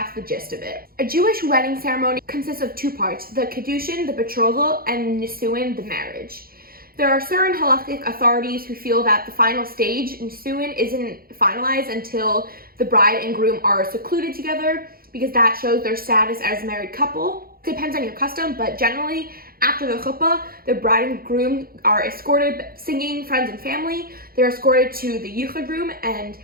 the gist of it. A Jewish wedding ceremony consists of 2 parts, the Kiddushin, the betrothal, and Nisuin, the marriage. There are certain halakhic authorities who feel that the final stage, Nisuin, isn't finalized until the bride and groom are secluded together, because that shows their status as a married couple. Depends on your custom, but generally, after the chuppah, the bride and groom are escorted, singing, friends and family. They're escorted to the Yichud room, and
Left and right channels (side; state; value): left; late; 0.43 ms